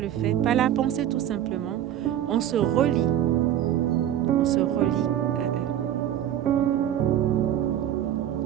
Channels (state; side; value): quieter; left; 11.1 dB